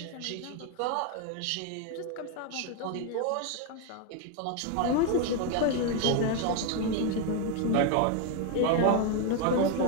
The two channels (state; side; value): different; both; correlation 0.01